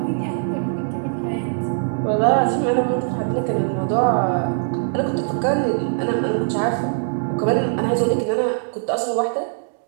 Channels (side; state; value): left; silent; digital silence